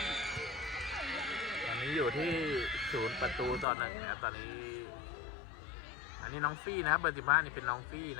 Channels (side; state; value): right; drops out; at 3.7 s